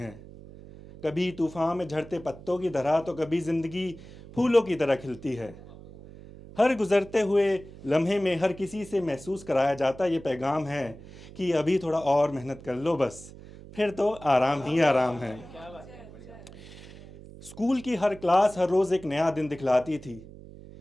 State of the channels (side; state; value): right; noise; hum, 17 dB below the sound